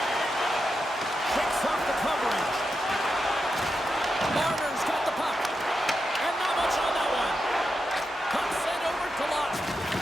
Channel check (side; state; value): both; normal; correlation 0.87